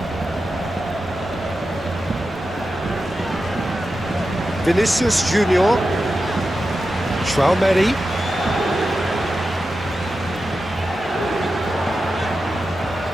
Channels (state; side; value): normal; both; correlation 0.91